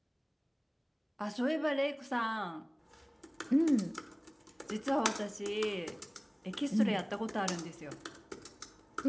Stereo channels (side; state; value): both; identical; correlation 1.00